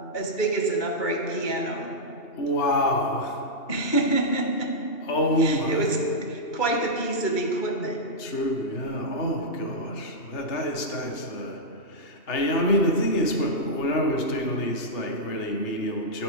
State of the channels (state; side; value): late; right; 2.8 ms